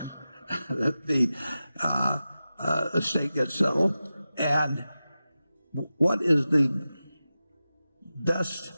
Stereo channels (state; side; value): inverted; both; correlation -0.93